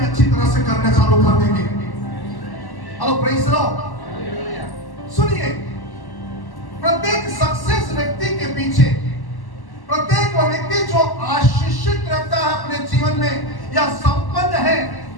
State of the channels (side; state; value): right; late; 1.1 ms